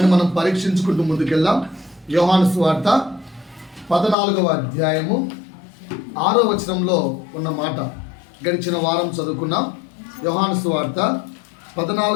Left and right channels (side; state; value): right; drops out; at 4.2 s